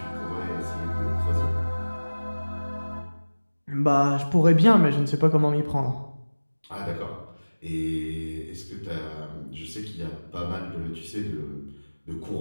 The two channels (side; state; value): both; inverted; correlation -1.00